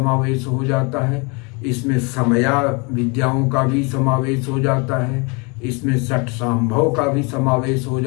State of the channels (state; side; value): quieter; right; 31.0 dB